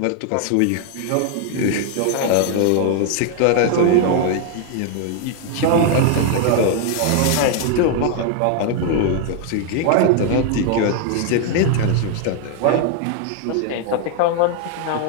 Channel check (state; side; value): different; both; correlation 0.00